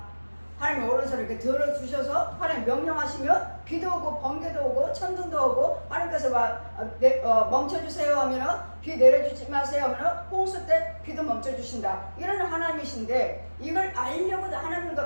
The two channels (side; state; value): both; inverted; correlation -1.00